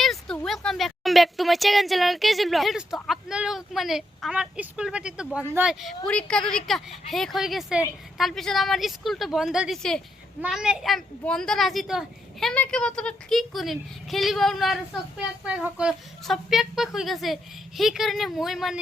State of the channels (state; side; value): normal; both; correlation 0.80